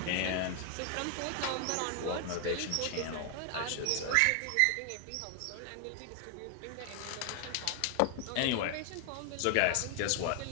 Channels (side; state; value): both; different; correlation 0.00